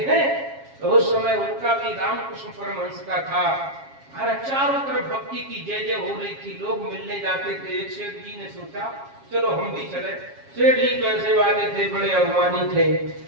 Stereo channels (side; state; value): left; late; 7.3 ms